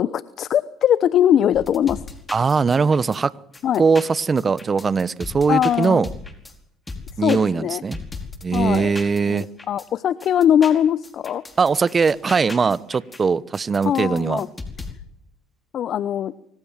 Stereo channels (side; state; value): both; normal; correlation 0.73